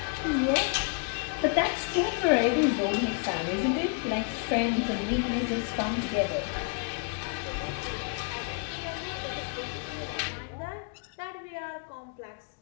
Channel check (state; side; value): quieter; right; 39.4 dB